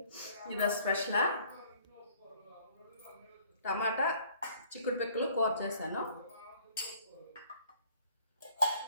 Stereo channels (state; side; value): inverted; both; correlation -0.57